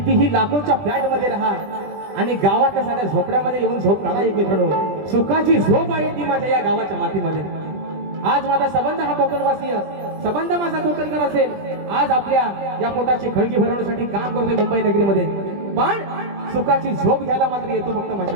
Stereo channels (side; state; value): left; late; 20 ms